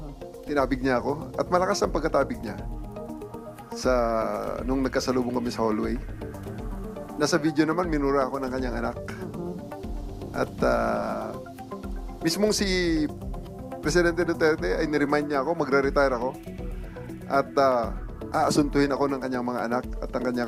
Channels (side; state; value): both; identical; correlation 1.00